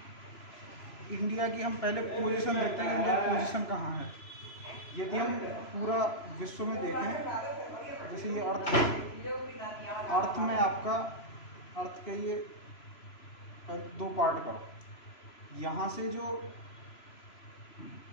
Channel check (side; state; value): right; late; 3.0 ms